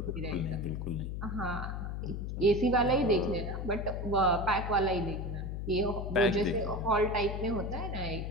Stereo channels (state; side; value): noise; left; hum, 4 dB below the sound